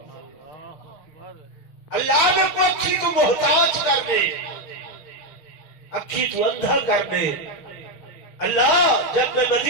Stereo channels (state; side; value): late; right; 6.2 ms